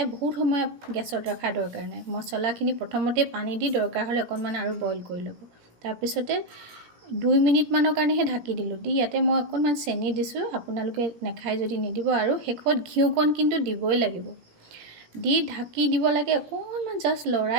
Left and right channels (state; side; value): late; left; 17 ms